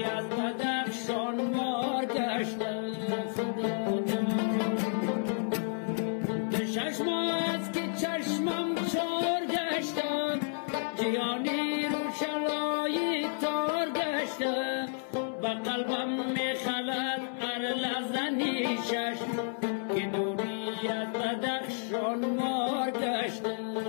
از بدخشان مار گشته. چشم است که چشمم چار گشته، جهانی روشنایی تار گشته، و قلبم میخلد هر لحظه نیشش که دوری از بدخشان مار گشته.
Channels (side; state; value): right; silent; 57 dB below the other